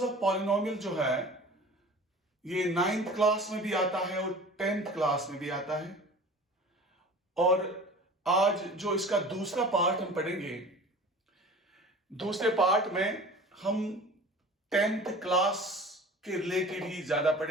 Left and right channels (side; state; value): both; normal; correlation 0.41